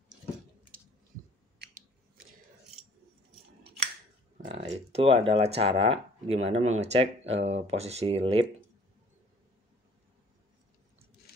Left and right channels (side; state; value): both; normal; correlation 0.54